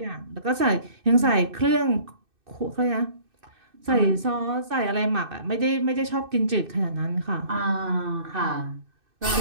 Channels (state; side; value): late; left; 2.6 ms